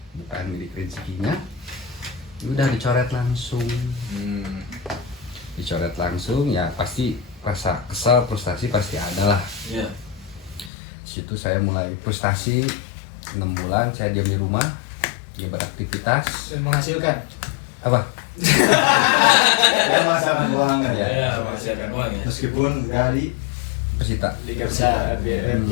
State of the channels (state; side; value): drops out; right; at 10.7 s